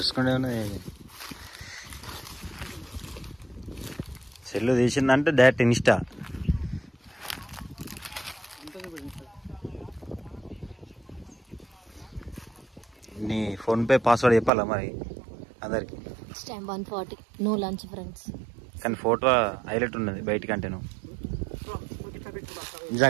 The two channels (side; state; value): left; drops out; at 14.5 s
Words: ఉన్నది సెల్లు తీసిందంటే డైరెక్ట్ ఇన్స్టా. నీ ఫోన్పే పాస్వర్డ్ చెప్పాలా మరి అందరికి? 140 నో లంచ్ ఫ్రెండ్స్. కానీ ఫోటో హైలైట్ ఉన్నది బయటికంటే. నువ్వు